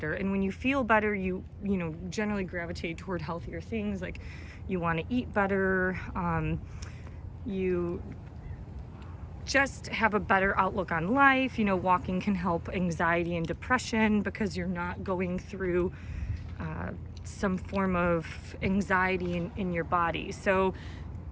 And when you feel better, you generally gravitate toward healthier things. Like you want to eat better. You just have a better outlook on life. Walking can help anxiety and depression because you're not going through some form of anxiety in your body. So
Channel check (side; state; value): both; identical; correlation 1.00